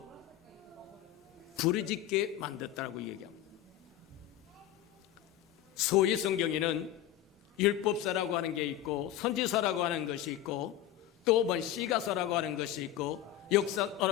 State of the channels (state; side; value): quieter; right; 12.1 dB